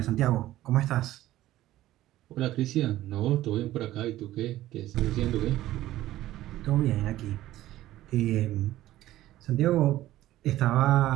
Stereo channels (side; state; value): left; quieter; 14.9 dB